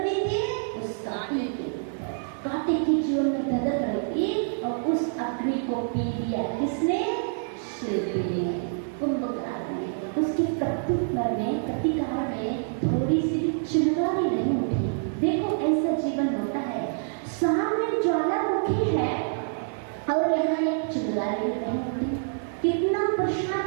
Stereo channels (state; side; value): silent; left; 60 dB below the other